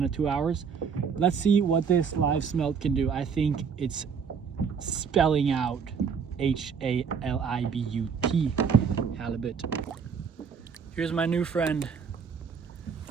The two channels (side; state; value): left; quieter; 6.4 dB